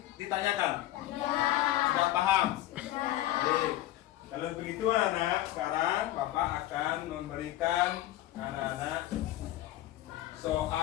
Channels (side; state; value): right; quieter; 14.8 dB